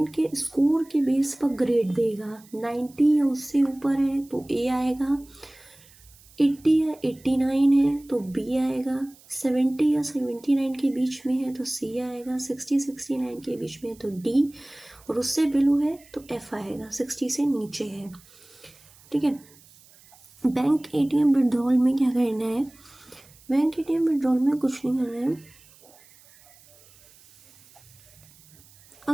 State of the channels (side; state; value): right; noise; hiss, 26 dB below the sound